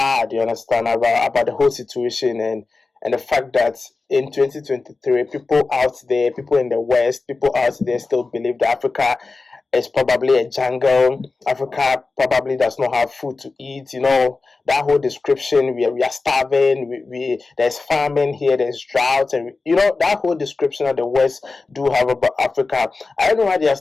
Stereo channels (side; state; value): right; quieter; 3.9 dB